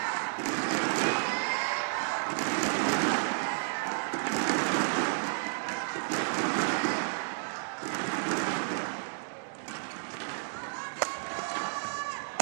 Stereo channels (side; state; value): left; silent; digital silence